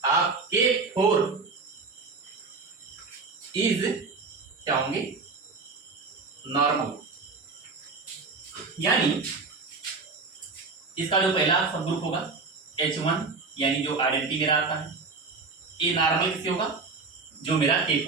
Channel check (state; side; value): quieter; left; 4.3 dB